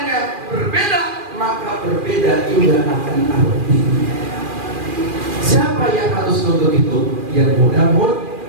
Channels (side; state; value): left; late; 2.4 ms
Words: berbeda, maka berbeda juga akan artinya. Siapa yang harus nonton itu? Yang mudah-mudahan.